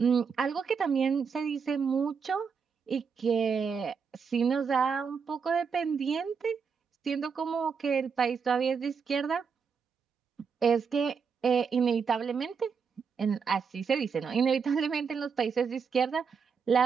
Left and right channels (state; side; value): quieter; left; 6.0 dB